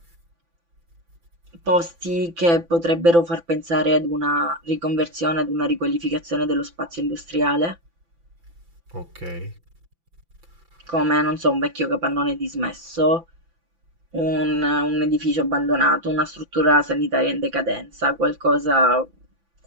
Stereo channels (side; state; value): left; late; 5.9 ms